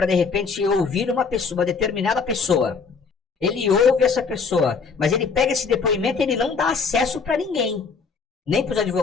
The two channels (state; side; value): quieter; right; 5.2 dB